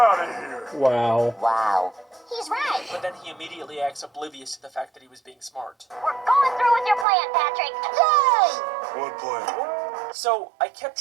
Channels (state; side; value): drops out; left; at 7.1 s